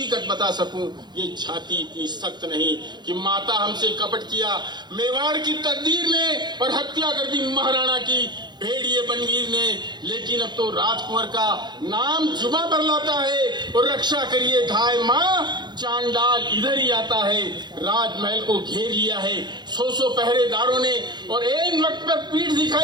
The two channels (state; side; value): late; left; 0.21 ms